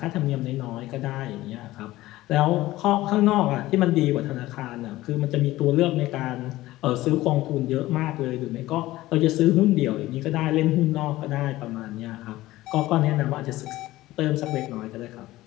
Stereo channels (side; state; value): right; quieter; 17.0 dB